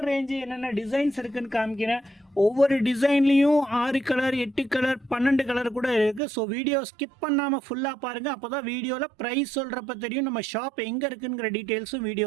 ரேஞ்சு, என்னென்ன டிசைன்ஸ் இருக்குதுன்னு காமிக்கிறேன். ஒவ்வொரு டிசைன்லேயும் 6 கலர், 8 கலர், 12 கலர் கூட இருக்குது. ஸோ வீடியோ ஸ்கிப் பண்ணாமல் ஃபுல்லாக பாருங்கள். அப்போ தான் வீடியோவில் ப்ரைஸ் சொல்கிறப்ப தெரியும் நம்ம ஷாப் எங்கே இருக்குங்கிற டீட்டெயில்ஸும்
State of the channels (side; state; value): left; drops out; at 6.2 s